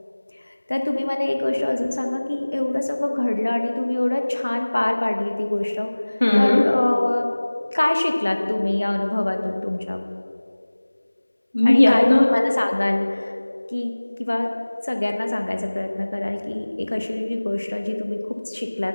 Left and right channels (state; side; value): inverted; both; correlation -1.00